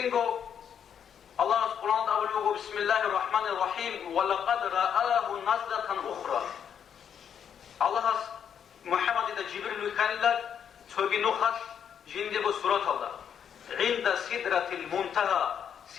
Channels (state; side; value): quieter; right; 8.2 dB